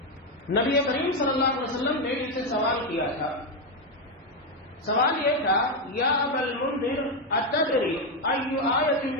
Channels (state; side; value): normal; both; correlation 0.06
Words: نبی کریم صلی اللہ علیہ وسلم نے ان سے سوال کیا تھا، سوال یہ تھا، یا ابا المنذر اتدری ای آیت